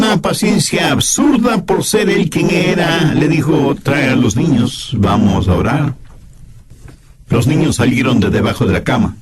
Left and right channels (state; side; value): identical; both; correlation 1.00